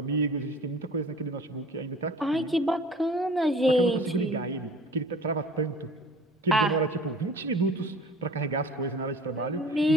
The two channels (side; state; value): both; normal; correlation 0.45